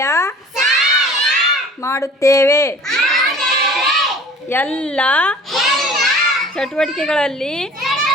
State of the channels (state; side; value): normal; both; correlation 0.46